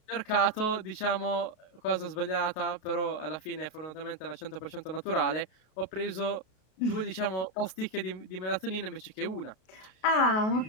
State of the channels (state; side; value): late; right; 33 ms